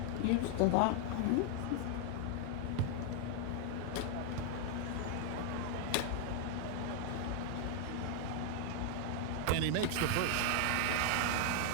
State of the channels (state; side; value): different; both; correlation 0.00